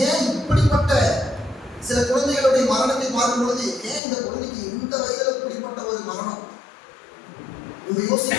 ஏன் இப்படிப்பட்ட சில குழந்தைகளுடைய மரணத்தை பார்க்கும் பொழுது ஏன் இந்த குழந்தைக்கு இந்த வயதில் இப்படிப்பட்ட ஒரு மரணம் நம்ம யோசிக்க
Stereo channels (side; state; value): right; drops out; at 4.0 s